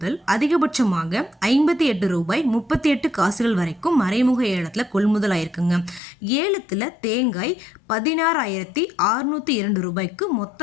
அதிகபட்சமாக 58 ரூபாய் 38 காசுகள் வரைக்கும் மறைமுக ஏலத்தில் கொள்முதல் ஆயிருக்குங்க. ஏலத்தில் தேங்காய் 16,602 ரூபாய்க்கு மொத்த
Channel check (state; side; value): drops out; right; at 6.0 s